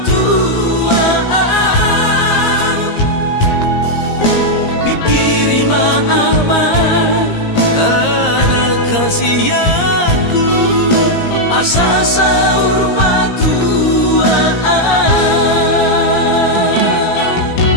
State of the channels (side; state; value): right; late; 17 ms